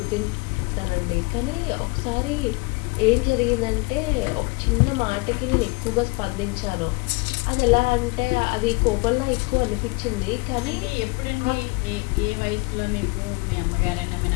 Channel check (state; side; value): quieter; right; 27.3 dB